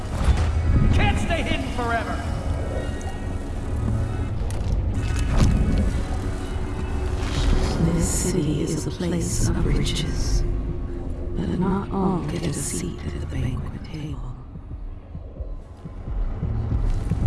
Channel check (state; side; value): identical; both; correlation 1.00